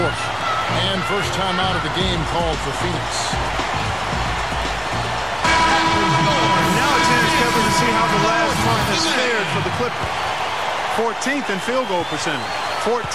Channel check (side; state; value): both; identical; correlation 1.00